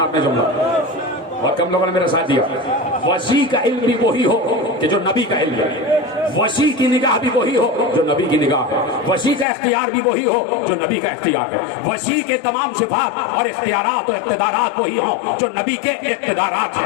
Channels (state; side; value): drops out; right; at 9.5 s